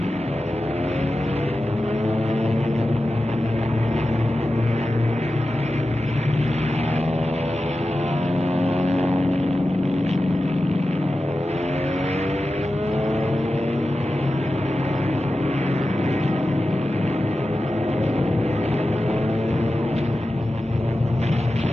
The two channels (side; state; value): both; normal; correlation 0.93